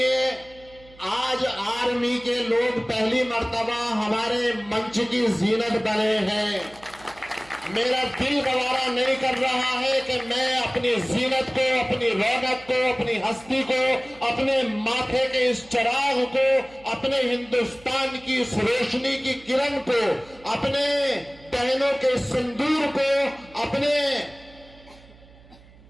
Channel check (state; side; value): noise; right; hum, 24 dB below the sound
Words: आज आर्मी के लोग पहली मर्तबा हमारे मंच की जीनत बने हैं। मेरा दिल गवारा नहीं कर रहा है कि मैं अपनी जीनत को, अपनी रौनक को, अपनी हस्ती को, अपने माथे के इस चिराग को, अपने हिंदुस्तान की इस रोशनी की किरण को, अपने बहनों के सिंदूर को, अपने